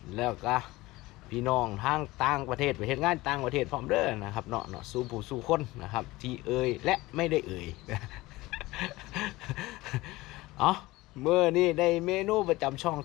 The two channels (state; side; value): quieter; right; 19.8 dB